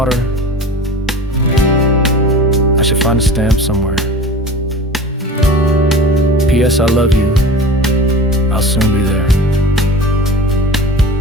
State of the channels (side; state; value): both; normal; correlation 0.37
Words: I should find a stamp somewhere. P.S. I love you. I'll soon be there.